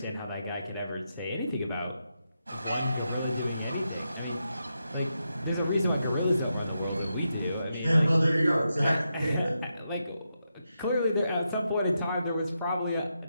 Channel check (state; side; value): inverted; both; correlation -0.85